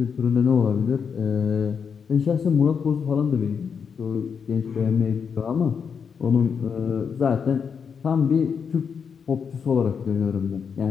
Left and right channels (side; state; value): right; quieter; 6.5 dB